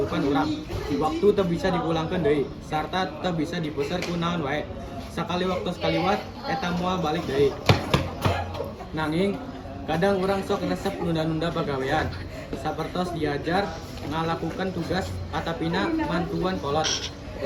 urang. Waktu teu bisa dipulangkeun deui sarta teu bisa dipeser ku naon wae. Sakali waktos kaliwat eta moal balik deui. Nanging kadang urang sok resep nunda-nunda pagawean. Sapertos diajar ngalakukan tugas atapina mantuan kolot.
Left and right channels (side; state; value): both; identical; correlation 1.00